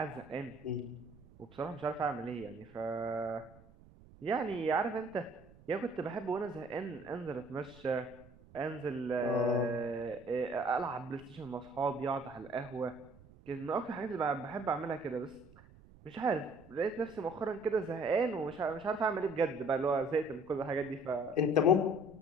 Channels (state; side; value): noise; right; rumble, 23 dB below the sound